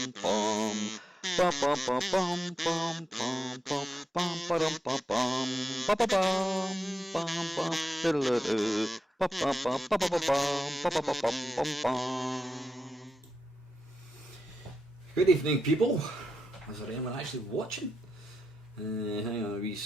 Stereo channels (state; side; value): normal; both; correlation 0.87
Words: ba bum bum bum bum bum ba dum bum bum ba ba bum bum bum diddle-a-doo ba ba ba ba ba ba bum ba ba ba bum bum bum. Good evening, people. Is there anyone actually watching? Hang on a wee